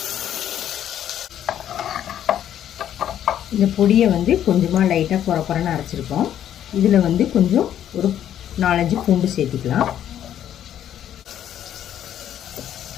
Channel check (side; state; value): right; quieter; 10.6 dB